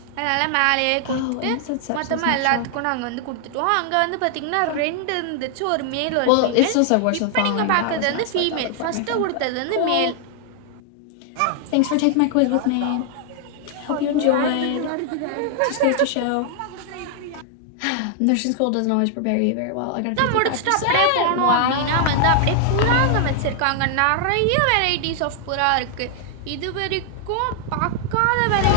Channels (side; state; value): both; different; correlation 0.00